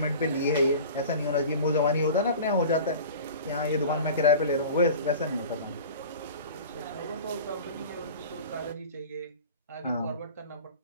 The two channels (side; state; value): both; inverted; correlation -0.38